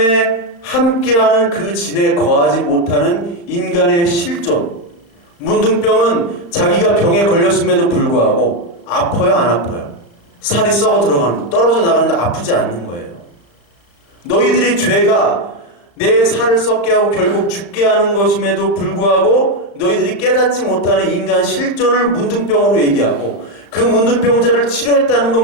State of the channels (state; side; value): late; right; 35 ms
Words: 함께하는 그 진에 거하지 못하는 인간의 실존. 문둥병은 자기가 병에 걸렸음에도 불구하고 아파요, 안 아파요? 살이 썩어 들어가는, 떨어져 나가는데 아프지 않는 거예요. 너희들이 죄가 내 살을 썩게 하고 결국 죽게 하는 것임에도 불구하고 너희들이 깨닫지 못하는 인간 실존을 문둥병으로 얘기하고 그 문둥병자를 치료했다는